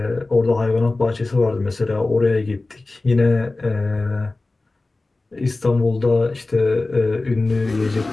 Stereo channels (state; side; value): quieter; right; 3.2 dB